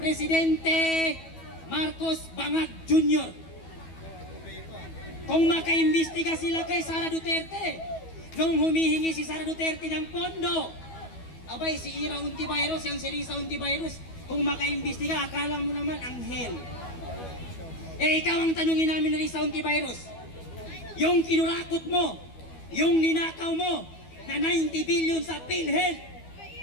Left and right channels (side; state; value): right; late; 12 ms